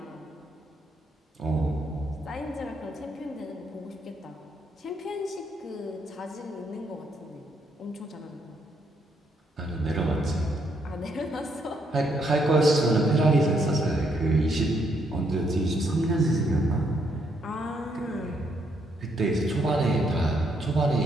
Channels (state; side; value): normal; both; correlation 0.74